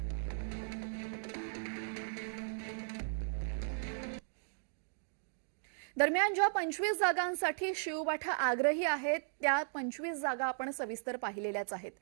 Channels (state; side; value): silent; left; digital silence